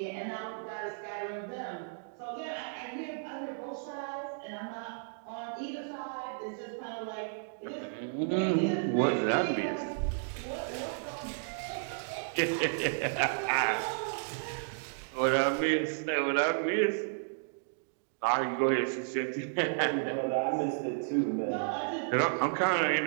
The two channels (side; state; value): left; silent; digital silence